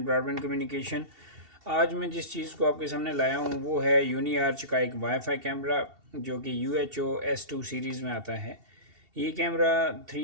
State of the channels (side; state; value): left; late; 2.7 ms